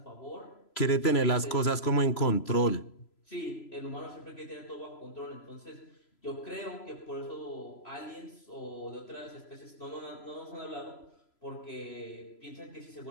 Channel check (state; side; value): late; right; 3.0 ms